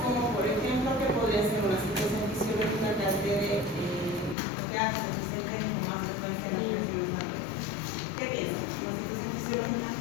como por ejemplo, que podría ser una situación fisiológica que altere que hace que se presenten con más frecuencia en las reacciones adversas. ¿Qué piensan? ¿Una situación fisiológica?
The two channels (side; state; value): right; drops out; at 4.4 s